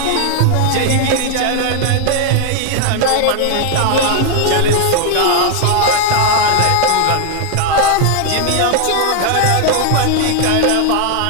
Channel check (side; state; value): both; different; correlation 0.01